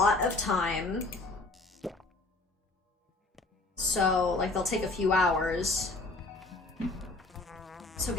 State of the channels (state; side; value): quieter; right; 3.2 dB